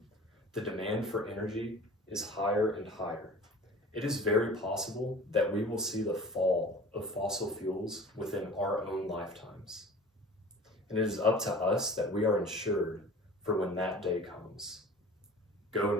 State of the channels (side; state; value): both; normal; correlation 0.42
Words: the demand for energy is higher and higher. It is very possible that we will see the fall of fossil fuels within our own lifetimes. And it is up to us that we are ensured for when that day comes. Go